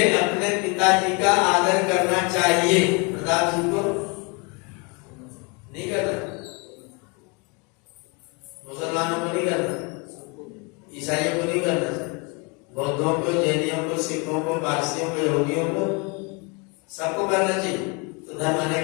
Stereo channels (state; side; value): quieter; right; 31.3 dB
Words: अपने पिताजी का आदर करना चाहिए, प्रताप जी को नहीं करना, मुसलमानों को नहीं करना, ईसाइयों को नहीं करना, बौद्धों को, जैनियों को, सिखों को, पारसियों को, यहूदियों को, सबको करना चाहिए। तो धर्म